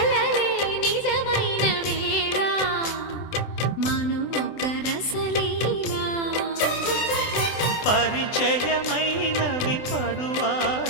నిజమైన వేళ మను ఒక రసలీలా పరిచయమైనవి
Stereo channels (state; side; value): late; right; 24 ms